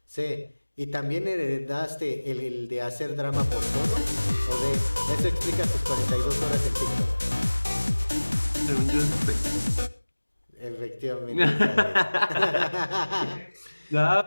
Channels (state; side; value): inverted; both; correlation -1.00